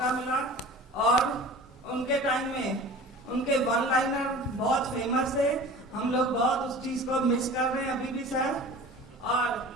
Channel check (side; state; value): both; normal; correlation 0.40